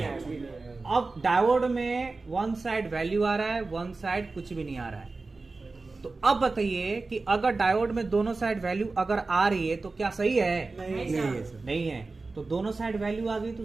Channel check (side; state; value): left; quieter; 3.7 dB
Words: आएगा। अब डायोड में वन साइड वैल्यू आ रहा है, वन साइड कुछ भी नहीं आ रहा है। तो अब बताइए कि अगर डायोड में दोनों साइड वैल्यू अगर आ रही है तो क्या सही है? नहीं है। तो दोनों साइड वैल्यू आ गई तो